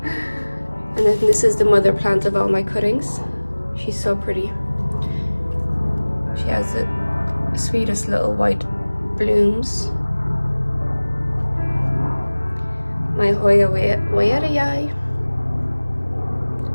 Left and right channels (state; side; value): inverted; both; correlation -1.00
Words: And then this is the mother plant of all my cuttings. She's so pretty. She has the sweetest little white blooms. my Hoya Hoya.